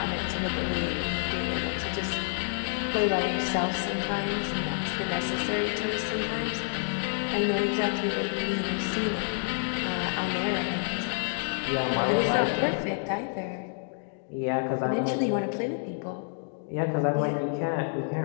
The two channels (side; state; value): right; silent; 59 dB below the other